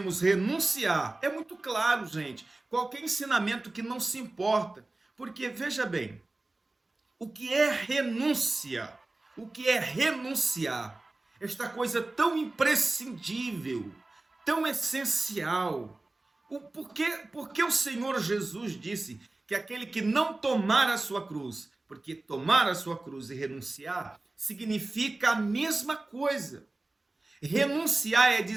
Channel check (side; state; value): left; quieter; 3.0 dB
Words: renunciar, é muito claro, gente, qualquer ensinamento que não se importa, porque veja bem, o que é renúncia? O que é renunciar? Esta coisa tão imprescindível, tão essencial. Por que o Senhor Jesus disse que aquele que não tomar a sua cruz, porque tomar a sua cruz e renunciar significa a mesma coisa. Renunciar é